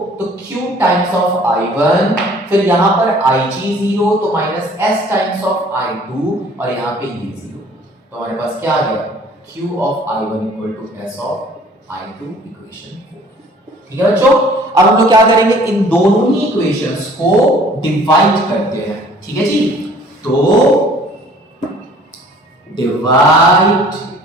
तो Q टाइम्स ऑफ I1, फिर यहां पर Ig जीरो, तो minus S times of I2, और यहां पे ये जीरो, तो हमारे पास क्या आ गया? Q of I1 equal to S of I2, equation 4। ठीक है बच्चों, अब हम लोग क्या करेंगे? इन दोनों ही इक्वेशंस को डिवाइड करते हैं। ठीक है जी, तो डिवाइड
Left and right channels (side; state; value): both; normal; correlation 0.53